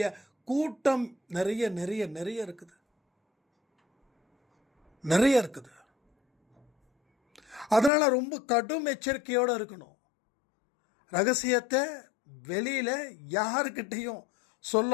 கூட்டம் நிறைய நிறைய நிறைய இருக்குது, நிறைய இருக்குது. அதனால் ரொம்ப கடும் எச்சரிக்கையோடு இருக்கணும். ரகசியத்தை வெளியில் யாருக்கிட்டையும்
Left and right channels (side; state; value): right; drops out; at 7.9 s